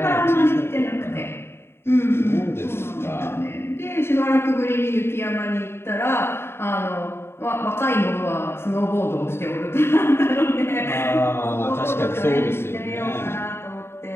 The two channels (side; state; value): right; late; 0.12 ms